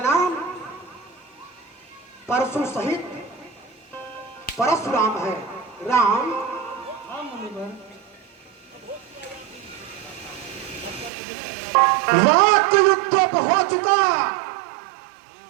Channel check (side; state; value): left; drops out; at 11.1 s